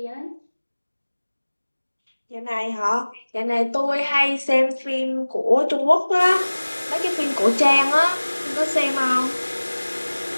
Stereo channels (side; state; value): both; inverted; correlation -1.00